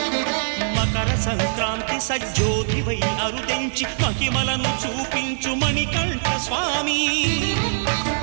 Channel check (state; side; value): silent; left; digital silence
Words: మకర సంక్రాంతి సజ్జోతివై అరుదెంచి మహిమలను చూపించు మణికంఠ స్వామి.